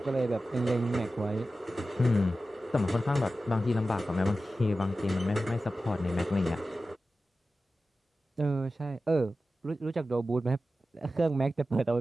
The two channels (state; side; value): normal; both; correlation 0.94